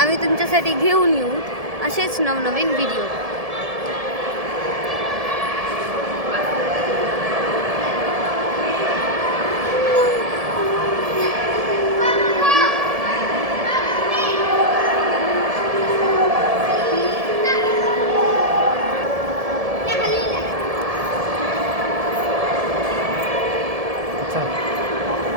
आम्ही तुमच्यासाठी घेऊन येऊ असेच नवनवीन व्हिडिओ.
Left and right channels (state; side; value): late; left; 1.7 ms